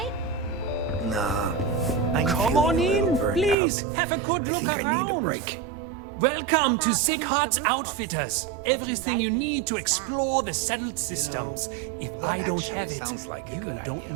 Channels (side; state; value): left; drops out; at 3.6 s